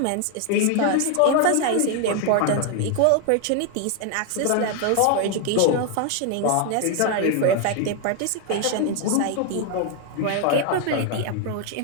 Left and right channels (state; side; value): different; both; correlation 0.00